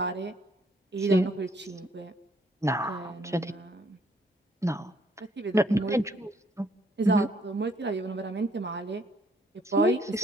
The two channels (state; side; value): normal; both; correlation 0.66